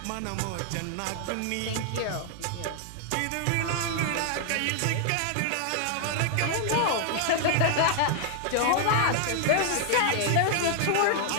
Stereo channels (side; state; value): both; different; correlation 0.00